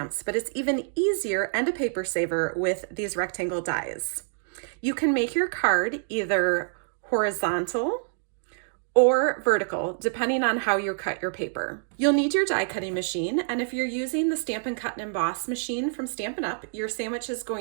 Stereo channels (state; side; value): silent; left; digital silence